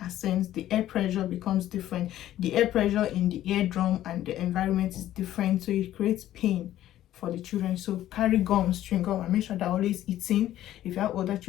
ascends, the air pressure becomes different. The air pressure in the eardrum and the environment is different, so it creates pain for the children. So carry gum, chewing gum, and make sure they're always eating. If you have older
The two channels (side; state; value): right; quieter; 13.1 dB